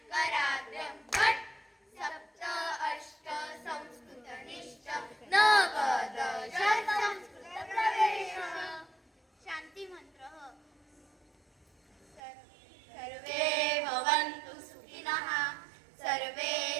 कराग्रं भट् सप्त अष्ट संस्कृतनिष्ठ नव दश संस्कृतप्रवेश. शान्ति मंत्र सर्वे भवन्तु सुखिनः सर्वे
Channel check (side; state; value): left; drops out; at 12.2 s